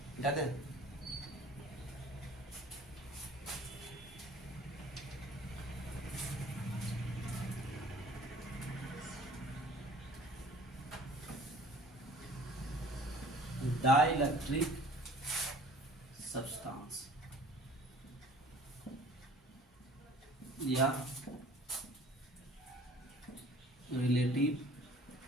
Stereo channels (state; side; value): normal; both; correlation 0.50